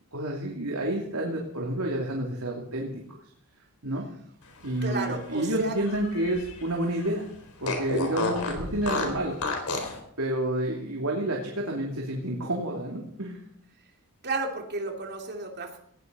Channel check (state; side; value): normal; both; correlation 0.12